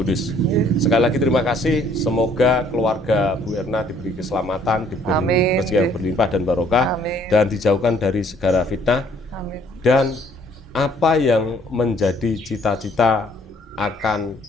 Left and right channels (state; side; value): normal; both; correlation 0.61